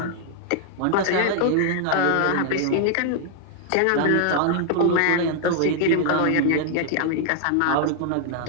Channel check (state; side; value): different; both; correlation 0.00